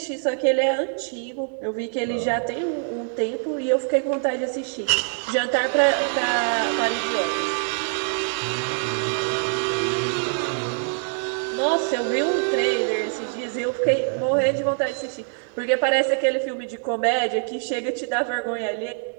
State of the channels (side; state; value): left; silent; 58 dB below the other